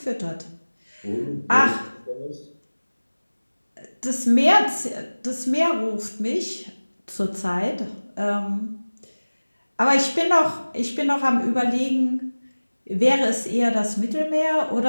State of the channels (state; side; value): inverted; both; correlation -1.00